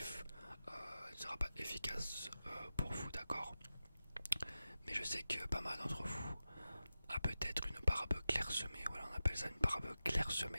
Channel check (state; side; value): inverted; both; correlation -0.93